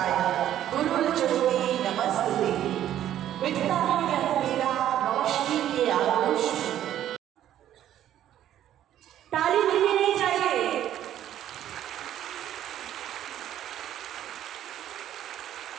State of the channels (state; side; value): quieter; left; 11.6 dB